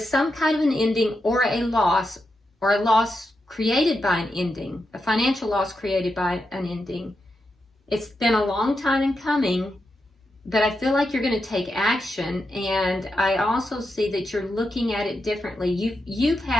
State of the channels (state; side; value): normal; both; correlation 0.86